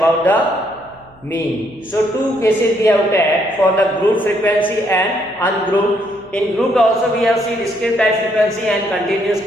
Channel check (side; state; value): right; noise; hum, 29 dB below the sound